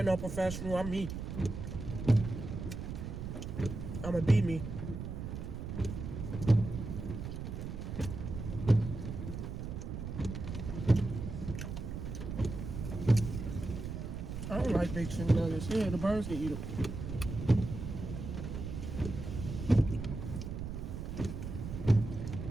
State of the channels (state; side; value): noise; right; rumble, 6 dB below the sound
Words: no professional, I'm me. I'ma be me. I don't like big chicken nuggets. Yeah, the birds can eat them.